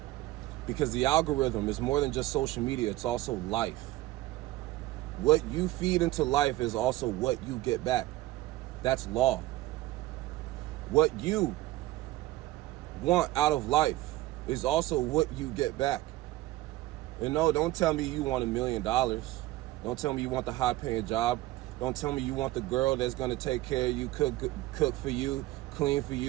Because the algorithm is more than just social media, it's also life. What you feed into life is also what you get back. That's law. What you want out of life is also what you get back. And no, don't tell me you want $1 million. Don't tell me you want the high-paying job. Don't tell me you want the girl that's going to take care of you, cook for you, clean for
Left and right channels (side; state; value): left; quieter; 17.3 dB